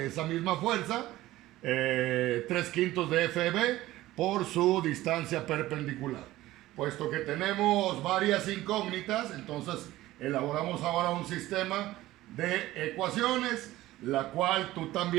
esa misma fuerza, 3/5 de FEB por su distancia perpendicular. Puesto que tenemos varias incógnitas, entonces elaboramos ahora un sistema de ecuaciones, la cual tú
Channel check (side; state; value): left; quieter; 16.4 dB